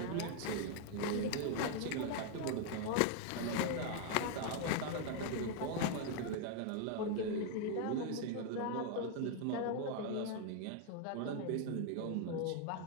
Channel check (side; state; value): both; different; correlation 0.00